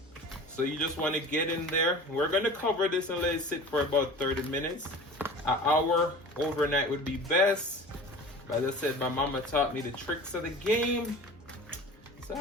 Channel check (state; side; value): normal; both; correlation 0.38